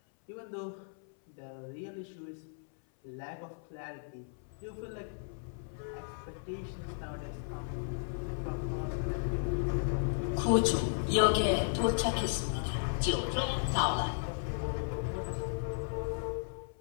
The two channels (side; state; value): right; silent; 54 dB below the other